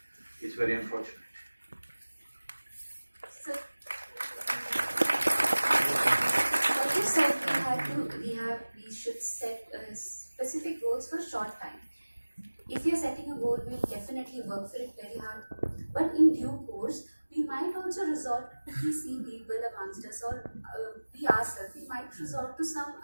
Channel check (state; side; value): inverted; both; correlation -1.00